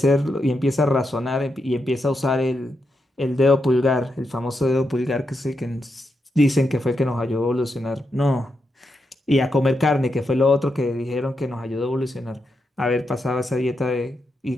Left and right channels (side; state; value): both; normal; correlation 0.84